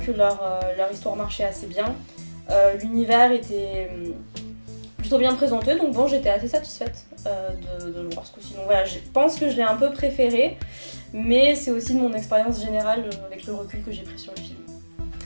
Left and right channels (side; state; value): both; inverted; correlation -1.00